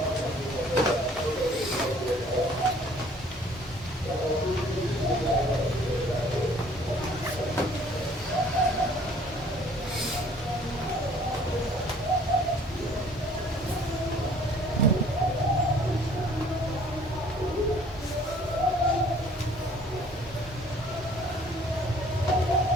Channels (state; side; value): normal; both; correlation 0.56